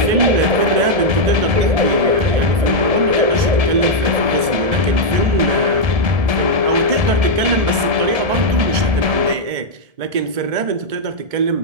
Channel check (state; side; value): late; left; 1.7 ms